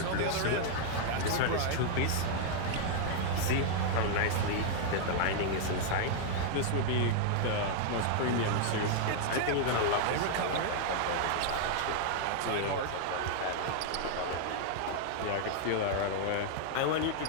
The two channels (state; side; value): different; both; correlation -0.01